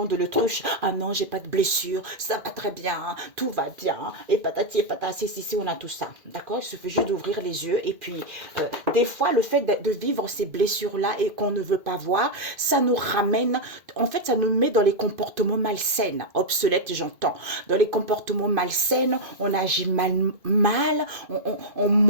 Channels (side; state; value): left; late; 2.5 ms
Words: de l'autruche. Ah non, j'ai pas de blessure, ça va très bien, tout va bien. Et patati et patati, si, on a tout ça. D'accord? Il suffit juste d'ouvrir les yeux. Et puis, des fois, le fait de vivre ces blessures-là et qu'on ne veut pas voir, ça nous ramène, en fait, ça nous met dans les comportements malsains. Obsolètes, j'entends. Dans les comportements malsains, on agit mal, on